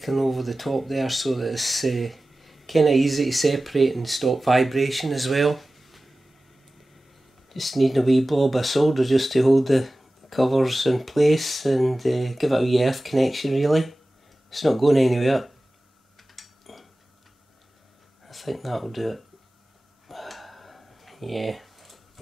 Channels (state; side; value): normal; both; correlation 0.96